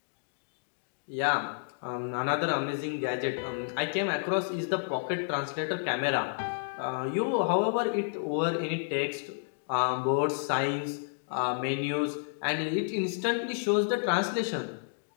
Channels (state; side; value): silent; right; digital silence